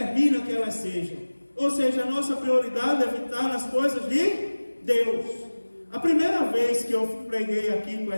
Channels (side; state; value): both; inverted; correlation -1.00